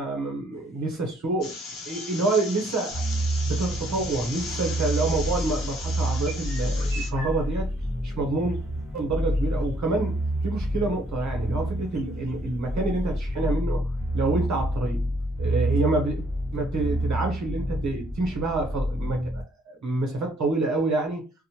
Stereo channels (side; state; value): both; normal; correlation 0.66